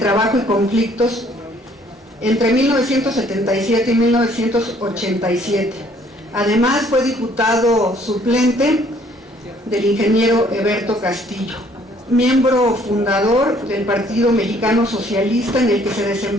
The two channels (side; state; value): both; normal; correlation 0.61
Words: y Conflictos entre 1977 y 1987. Además fue diputado suplente del ingeniero Eberto Castillo, miembro fundador del Partido Mexicano Socialista, en el que se